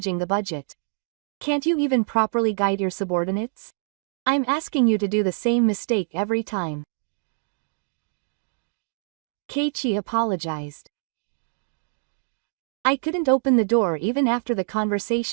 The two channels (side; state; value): left; silent; digital silence